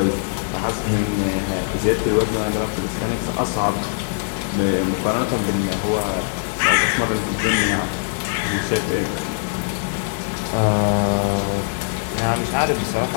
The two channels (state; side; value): silent; right; digital silence